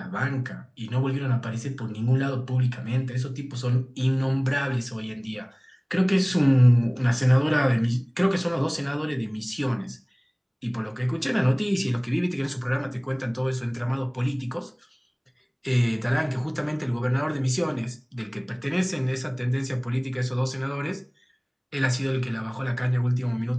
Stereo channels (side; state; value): both; identical; correlation 1.00